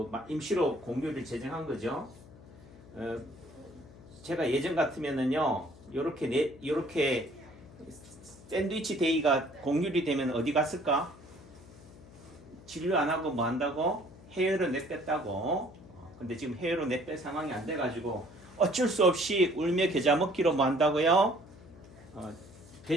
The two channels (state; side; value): noise; left; hum, 21 dB below the sound